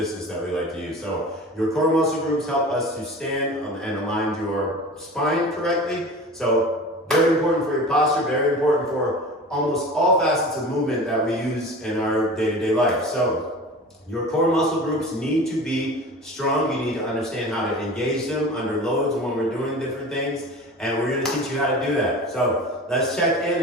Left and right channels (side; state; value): both; normal; correlation 0.37